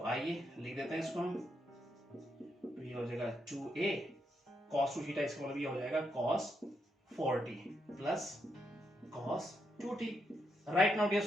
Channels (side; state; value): both; normal; correlation 0.81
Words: आइए लिख देते हैं इसको हम। तो ये हो जाएगा 2a cos 2 थीटा, इसका मतलब ये हो जाएगा cos 4t plus cos 2t right now dear